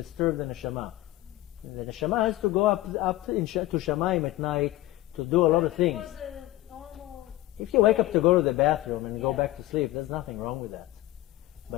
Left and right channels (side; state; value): right; quieter; 16.6 dB